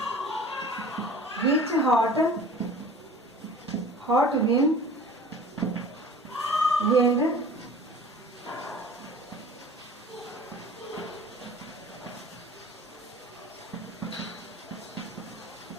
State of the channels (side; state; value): both; normal; correlation 0.43